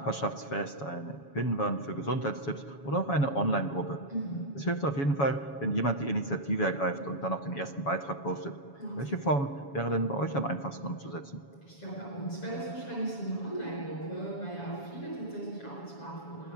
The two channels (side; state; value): right; late; 7.1 ms